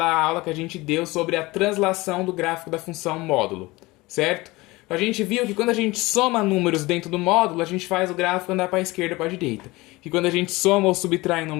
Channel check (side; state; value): right; quieter; 21.5 dB